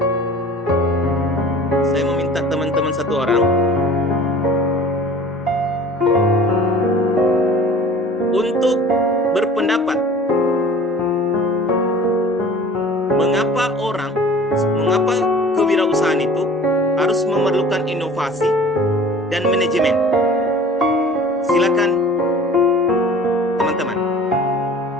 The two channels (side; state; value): both; normal; correlation 0.45